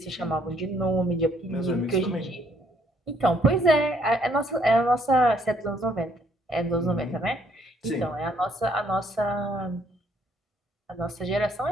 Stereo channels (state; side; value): normal; both; correlation 0.67